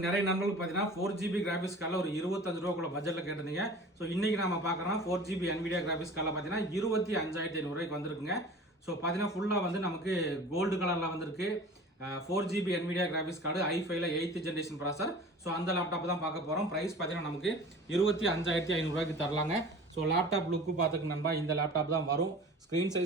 நிறைய நண்பர்கள் பார்த்தீங்கன்னா 4GB கிராஃபிக்ஸ் கார்டில் ஒரு 25 ரூபாக்குள்ள பட்ஜெட்டில் கேட்டிருந்தீங்க. ஸோ இன்னைக்கு நம்ம பார்க்குறோம் 4GB NVIDIA கிராஃபிக்ஸ் கார்டில் பார்த்தீங்கன்னா 25,500 ரூபாய்க்கு வந்திருக்குங்க. ஸோ பார்த்தீங்கன்னா ஃபுல்லாக வந்து நமக்கு கோல்டு கலரில் வந்திருக்கு. 4GB NVIDIA கிராஃபிக்ஸ் கார்டு i5ல 8th ஜென்ரேஷன் ப்ராசர். ஸோ அந்த லேப்டாப் தான் பார்க்க போகிறோம். ப்ரைஸ் பார்த்தீங்கன்னா நமக்கு 25,500 ரூபாய்க்கு தரலாங்க. ஸோ லேப்டாப் லுக்கு பார்த்துக்கு நண்பா இந்த லேப்டாப் தான் வரும். ஸ்க்ரீன்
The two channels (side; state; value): both; normal; correlation 0.41